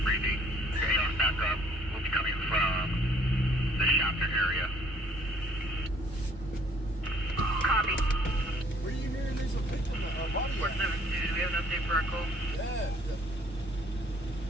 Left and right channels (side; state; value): both; normal; correlation 0.60